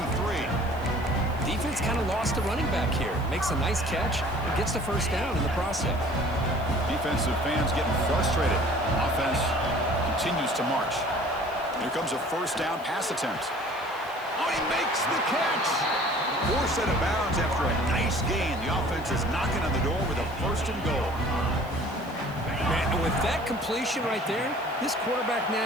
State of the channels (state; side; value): noise; right; hiss, 24 dB below the sound